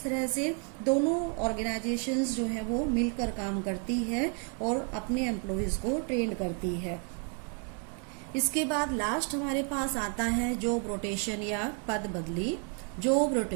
तरह से दोनों ऑर्गेनाइजेशंस जो है वो मिलकर काम करती है और अपने एम्प्लॉयज़ को ट्रेन करती है। इसके बाद लास्ट हमारे पास आता है जॉब रोटेशन या पद बदली। जॉब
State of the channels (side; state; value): left; quieter; 39.4 dB